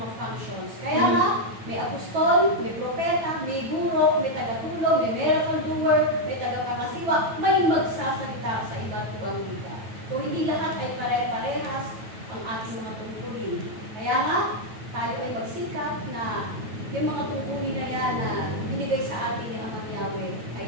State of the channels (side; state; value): left; late; 9.1 ms